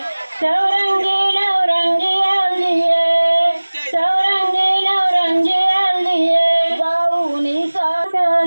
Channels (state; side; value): inverted; both; correlation -1.00